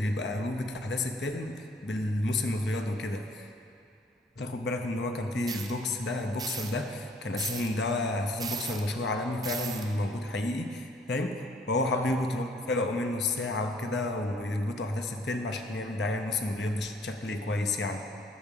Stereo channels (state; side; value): normal; both; correlation 0.61